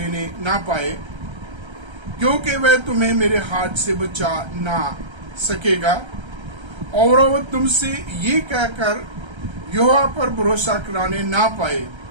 ना पाए, क्योंकि वह तुम्हें मेरे हाथ से बचा ना सकेगा, और वह तुमसे ये कहकर यहोवा पर भरोसा कराने ना पाए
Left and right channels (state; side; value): late; left; 1.3 ms